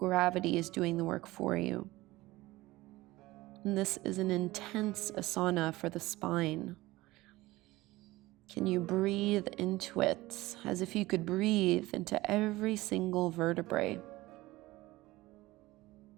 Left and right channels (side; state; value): left; quieter; 19.0 dB